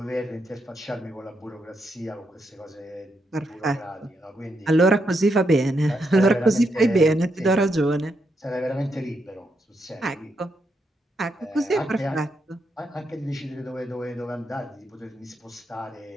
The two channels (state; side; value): normal; both; correlation 0.81